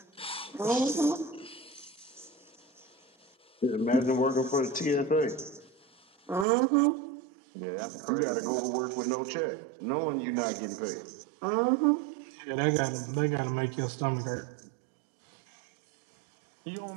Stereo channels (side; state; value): left; drops out; at 6.5 s